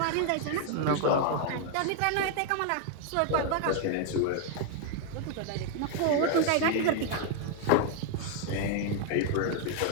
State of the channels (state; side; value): different; both; correlation 0.00